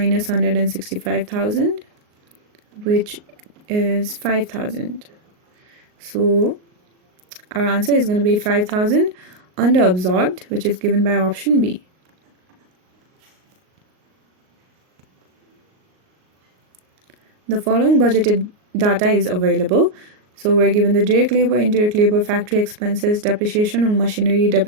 165,000, which is 5,000. So our answer is going to be 5,000 under absorbed, which is given by option B. The following budgeted data is available. So we're given the direct labor, indirect labor, factory expenses, depreciation on machinery,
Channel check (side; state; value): left; late; 38 ms